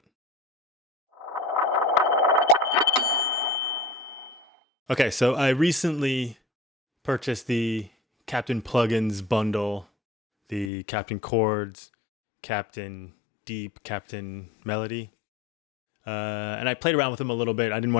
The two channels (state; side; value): drops out; right; at 10.7 s